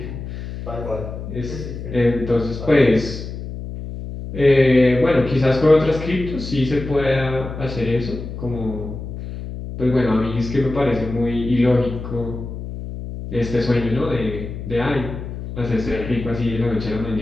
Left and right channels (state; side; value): noise; left; hum, 8 dB below the sound